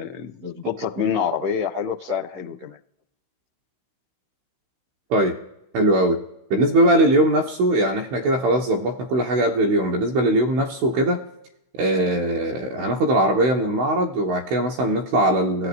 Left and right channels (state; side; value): late; left; 16 ms